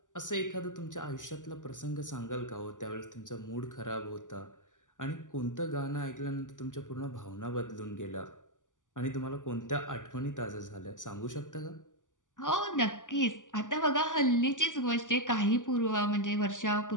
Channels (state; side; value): late; right; 0.87 ms